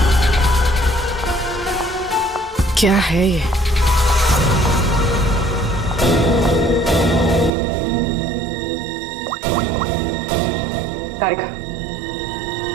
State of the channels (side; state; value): left; drops out; at 7.5 s